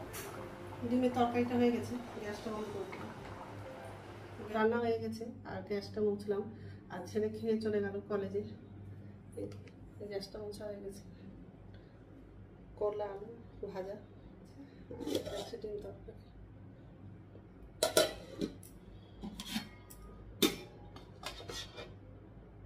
ডিমের তরকারিটা হয়ে গেছে, গ্যাসটা বন্ধ করে দিলাম। রান্না হয়ে গেছে আর গ্যাসটা মুছলাম। আর ছেলে খেয়ে চলে গেল কলেজে। গ্যাসটা মোছা হয়ে গেছে। করলা আলু ভাজা, ডিম তরকারি।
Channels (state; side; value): identical; both; correlation 1.00